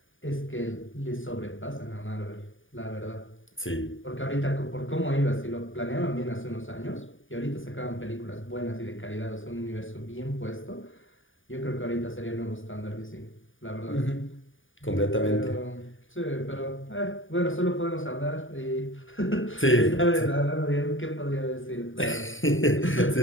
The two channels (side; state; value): right; late; 0.57 ms